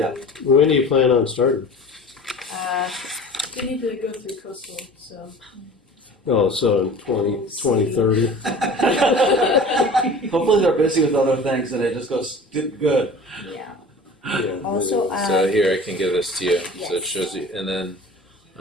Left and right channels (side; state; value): both; normal; correlation 0.40